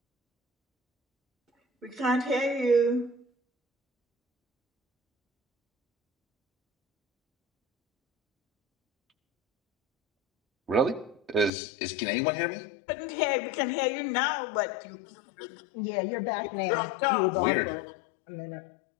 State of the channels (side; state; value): right; drops out; at 11.5 s